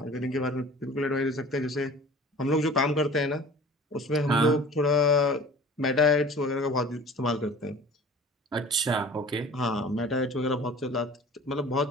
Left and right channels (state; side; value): normal; both; correlation 0.43